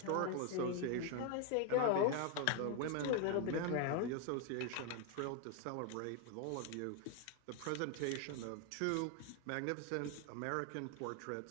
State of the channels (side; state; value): both; different; correlation 0.01